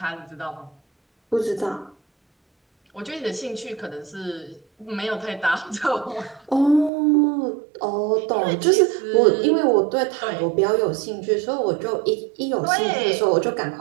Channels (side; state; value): left; drops out; at 6.9 s